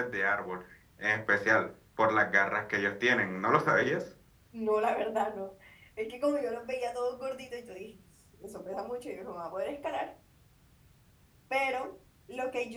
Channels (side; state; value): both; identical; correlation 1.00